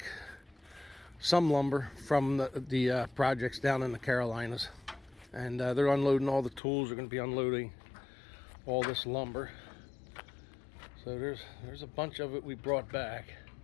some lumber from the projects down in the Carolinas, and they're unloading all the tools. They're going to be unloading all this lumber. So there's a bunch of it we brought back.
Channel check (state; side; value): drops out; right; at 6.6 s